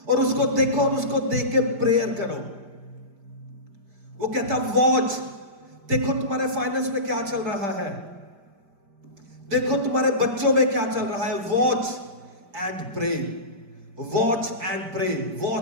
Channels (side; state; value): left; late; 5.1 ms